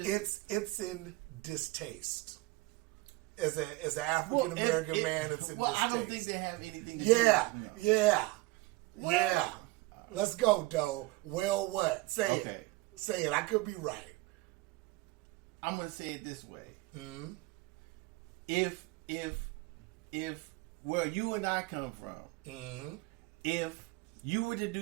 It's in distaste. As an African American man, it's in distaste. I don't think they have anything. Yeah. Let's go, Doe. Well, what? Say Okay. it. Say it. I could be right. I'm gonna say it this way. Mm-hmm. If where you and I come from, Mm-hmm. if you were to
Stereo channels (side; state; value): left; quieter; 20.8 dB